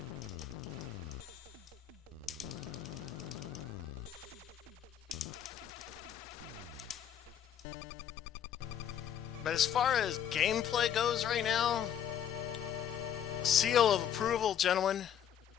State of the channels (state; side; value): quieter; right; 9.5 dB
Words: But as far as gameplay goes right now, seal of approval, gentlemen.